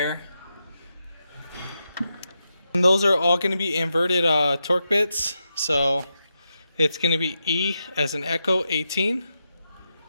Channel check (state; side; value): inverted; both; correlation -0.86